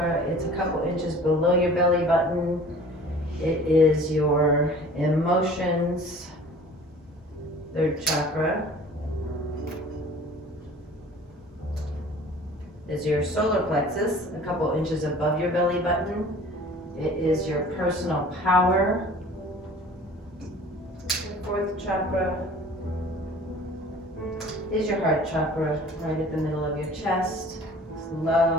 It's a couple inches below your belly button. It is your emotions, third chakra. Is your solar plexus, a couple inches above your belly button. It is your personal power. Your fourth chakra is your heart chakra, right at the middle of your chest. It's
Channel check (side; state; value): both; normal; correlation 0.46